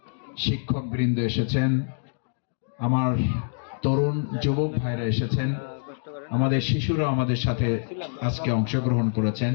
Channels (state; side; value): silent; right; digital silence